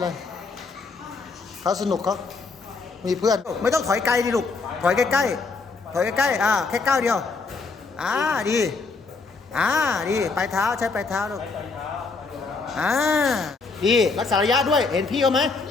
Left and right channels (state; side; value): quieter; right; 4.3 dB